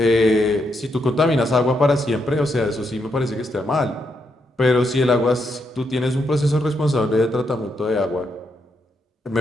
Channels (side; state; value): both; normal; correlation 0.80